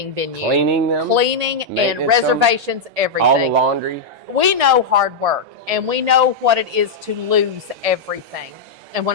venue. Cleaning them. Cleaning and maintenance reservations, everything. All the laundry. We know hard work, and we know what it is to lose everything. And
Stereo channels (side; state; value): right; quieter; 3.7 dB